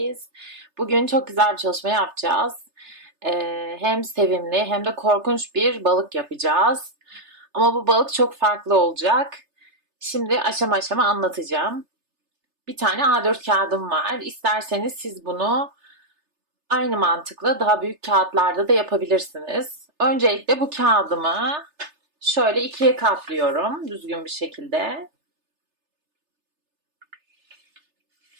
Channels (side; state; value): left; late; 3.3 ms